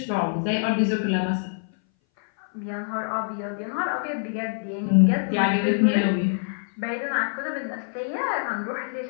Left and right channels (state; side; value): silent; right; 59 dB below the other